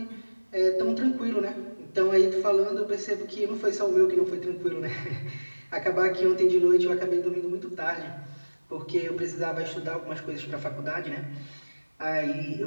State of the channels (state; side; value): inverted; both; correlation -1.00